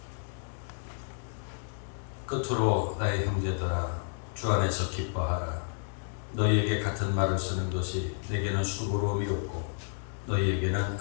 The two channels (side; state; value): right; silent; digital silence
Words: 끝으로 나의 형제들아 주 안에서 기뻐하라. 너희에게 같은 말을 쓰는 것이 내게는 수고로움이 없고 너희에게는